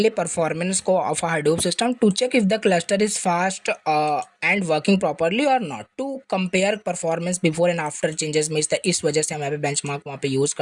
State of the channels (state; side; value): identical; both; correlation 1.00